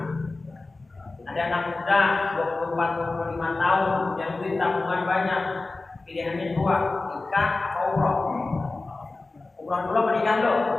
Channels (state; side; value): quieter; right; 3.4 dB